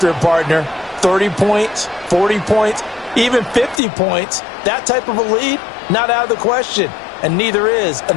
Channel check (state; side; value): drops out; right; at 3.8 s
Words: it, partner, 30 points, 40 points, even 50 points, that type of a lead, not out of the question. And neither is